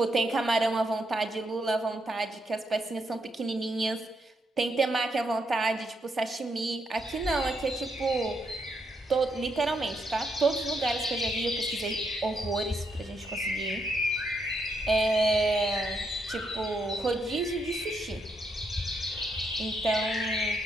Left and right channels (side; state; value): both; normal; correlation 0.78